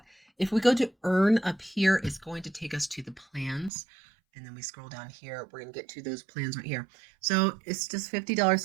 If we go to earn up here, it's going to take us to the plans. And then we scroll down here, we're going to get to those plans right here. So it's just $50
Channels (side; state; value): left; drops out; at 3.7 s